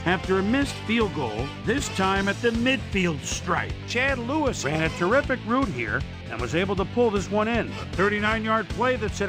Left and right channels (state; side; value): identical; both; correlation 1.00